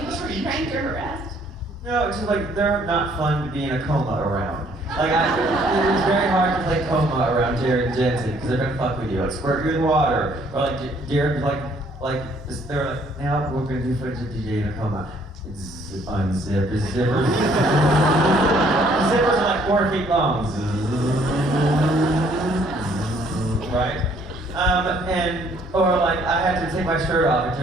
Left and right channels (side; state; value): both; normal; correlation 0.63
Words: ever be pranked or harassed? No, it's just like they're not fun to be in a coma around. Like it's very hard to play coma around Jared and Jensen because they're gonna fuck with you, like squirt you in water, or like Jared they're like, now we're gonna do footage of DJ in a coma. Unzip his zippers. Zippers are like 4 feet long. Right? Or like I had to take my shirt off and